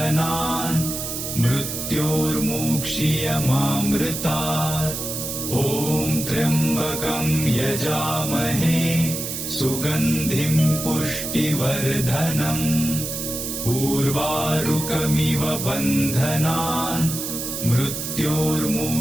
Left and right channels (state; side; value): noise; right; hiss, 5 dB below the sound